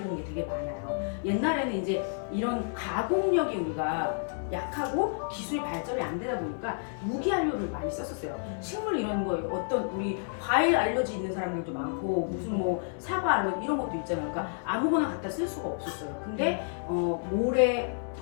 온 게 되게 많아요. 옛날에는 이제 이런 가공력이 우리가 약하고 기술이 발전이 안 되다 보니까 무기안료를 많이 썼었어요. 식물 이런 거, 어떤 우리 과일 알러지 있는 사람들도 많고 무슨 뭐 사과 알러지 이런 것도 있잖아요. 그러니까 아무거나 갖다 쓸 수가 없었어요. 근데 모래,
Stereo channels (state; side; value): silent; right; digital silence